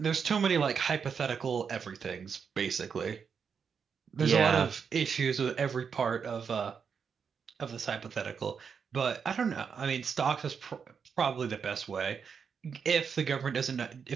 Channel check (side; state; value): left; quieter; 6.4 dB